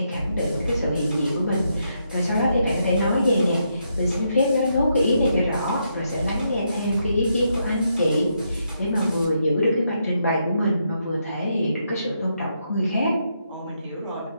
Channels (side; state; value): both; inverted; correlation -0.79